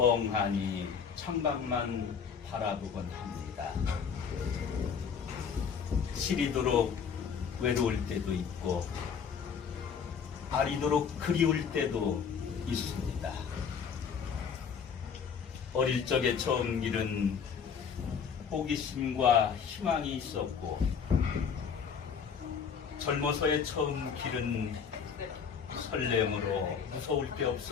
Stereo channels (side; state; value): right; quieter; 6.7 dB